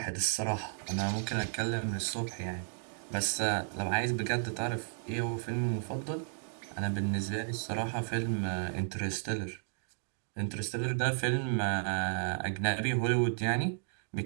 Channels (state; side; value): silent; left; digital silence